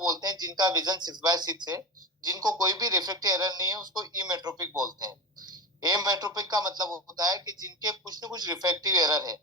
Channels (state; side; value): normal; both; correlation 0.23